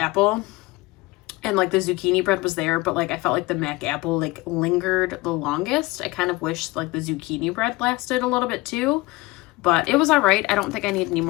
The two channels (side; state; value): right; quieter; 21.3 dB